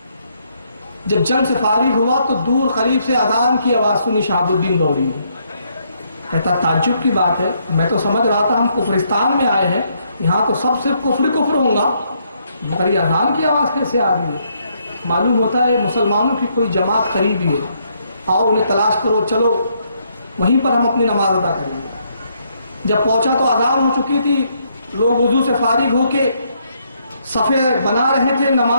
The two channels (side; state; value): both; inverted; correlation -0.73